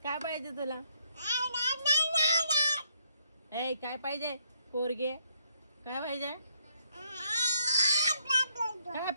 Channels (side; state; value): both; inverted; correlation -0.72